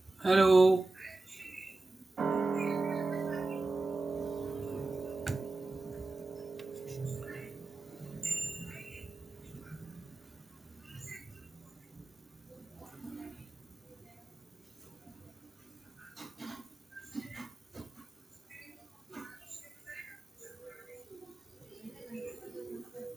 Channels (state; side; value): quieter; left; 3.2 dB